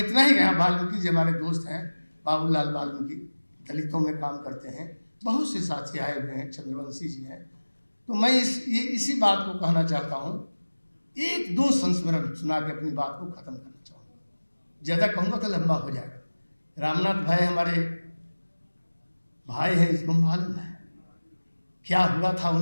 ही कहा, वाल्मीकि जी हमारे दोस्त हैं, बाबूलाल वाल्मीकि दलितों में काम करते हैं, बहुत से साथी आए हुए हैं, चंद्रवंशी जी हैं। तो मैं इसी बात को कहना चाहता हूँ, 1-2 संस्मरण सुना के अपनी बात को ख़त्म करना चाहूँगा। ज़्यादा कहूँगा तो लंबा हो जाएगा। रामनाथ भाई हमारे भाई हैं, इसको मालूम है क्या हुआ था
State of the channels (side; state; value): both; inverted; correlation -1.00